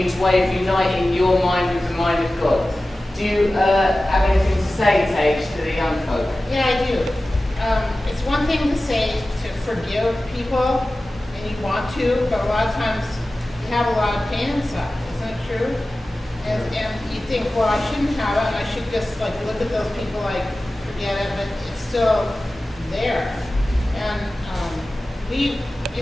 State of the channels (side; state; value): both; normal; correlation 0.96